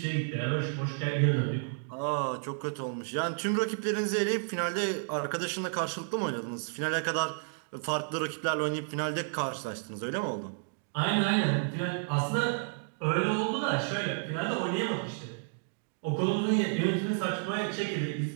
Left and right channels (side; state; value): left; silent; digital silence